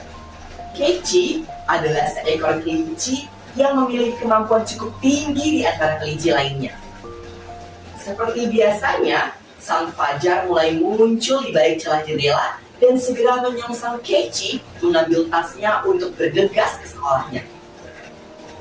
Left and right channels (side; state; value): both; identical; correlation 1.00